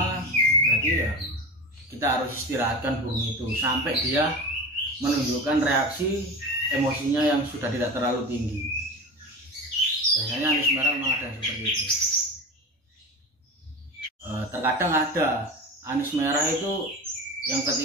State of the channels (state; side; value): normal; both; correlation 0.28